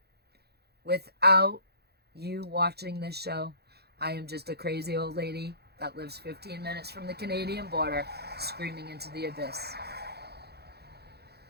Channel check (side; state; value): left; late; 0.47 ms